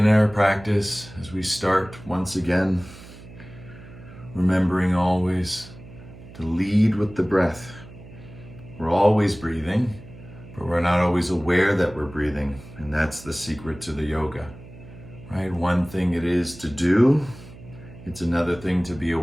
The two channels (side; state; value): right; noise; hum, 17 dB below the sound